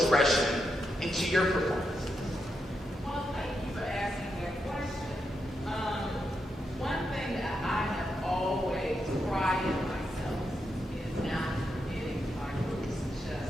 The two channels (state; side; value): normal; both; correlation 0.84